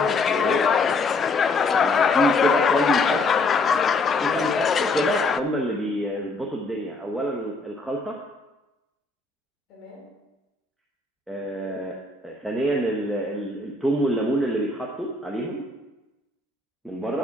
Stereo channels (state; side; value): quieter; right; 3.3 dB